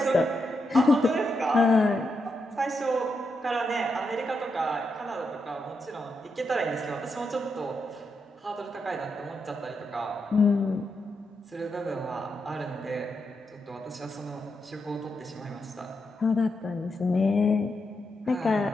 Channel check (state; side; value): normal; both; correlation 0.84